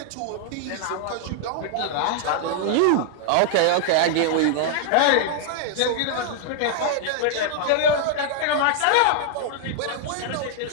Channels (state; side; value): different; both; correlation -0.01